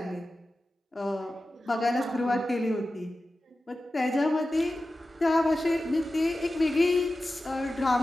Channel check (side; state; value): both; normal; correlation 0.94